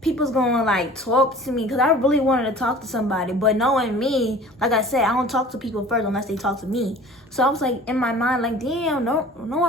people's gonna like talk to me because I really wanted to talk to somebody, but knowing me, like I said, I don't talk to people first unless they talk to me. So I was like in my mind like, damn, no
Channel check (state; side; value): normal; both; correlation 0.44